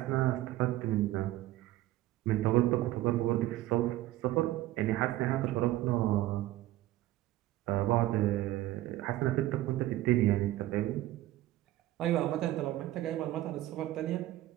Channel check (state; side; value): quieter; left; 15.6 dB